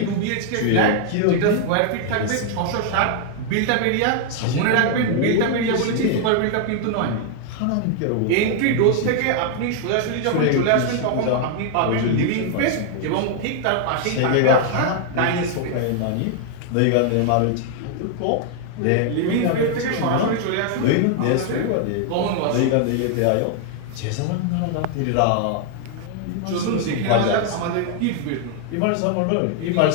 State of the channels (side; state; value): both; different; correlation 0.00